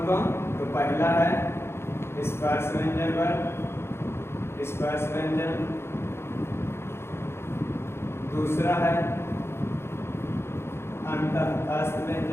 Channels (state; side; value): late; right; 0.12 ms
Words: कौन? तो पहला है स्पर्श व्यंजन, दूसरा है अंतःस्थ